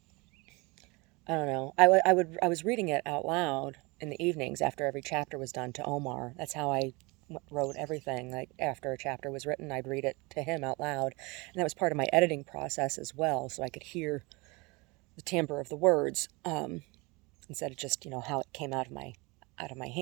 I don't know, I was reading it out loud in the evenings after every chapter was done to Omar. That's how I wrote everything. Like, after a chapter was written, I'd read it to him out loud. And that was part of my editing process as well, so I could hear the timbre of the words, instead of just, how it came out of my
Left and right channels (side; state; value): left; quieter; 26.2 dB